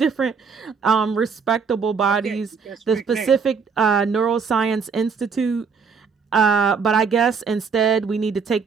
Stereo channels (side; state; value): left; quieter; 5.6 dB